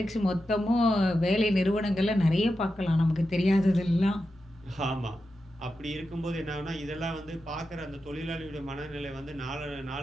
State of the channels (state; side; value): normal; both; correlation 0.90